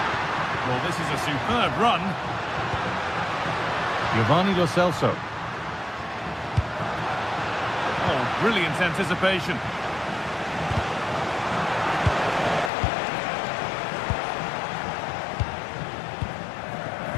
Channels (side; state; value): right; drops out; at 12.7 s